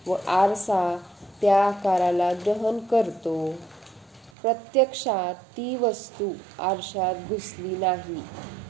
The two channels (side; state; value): left; drops out; at 4.3 s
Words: व आरसा त्या आकाराला ग्रहण करतो. प्रत्यक्षात ती वस्तू आरशात घुसली नाही